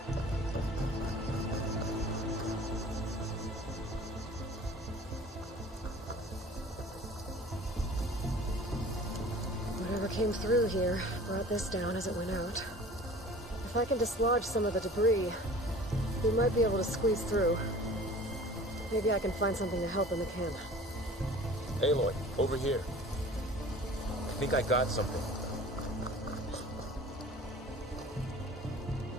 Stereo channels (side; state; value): both; normal; correlation 0.44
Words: Whatever came through here brought this down as it went out. If I can dislodge some of the debris, we might be able to squeeze through. Maybe I can find something to help in the camp. Aloy, over here. I think I got something.